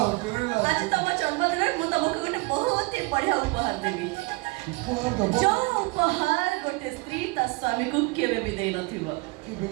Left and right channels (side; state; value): left; quieter; 25.4 dB